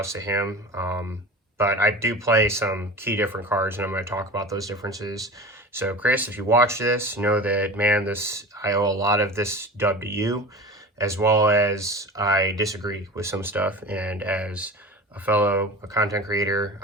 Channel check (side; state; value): both; normal; correlation 0.34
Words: to him. But I do play some key different cards, and I'm going to talk about those differences. So Chris, if you watch this, know that, man, I owe a lot of this dub to you, as well as I disagree with some stuff. And as a fellow content creator,